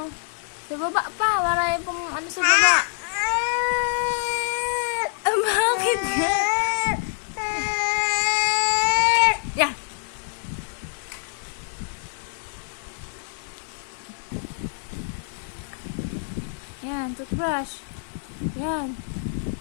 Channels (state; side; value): silent; right; 61 dB below the other